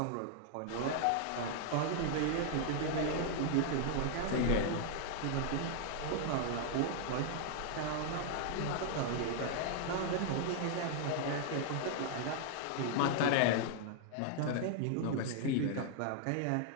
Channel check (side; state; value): both; different; correlation -0.01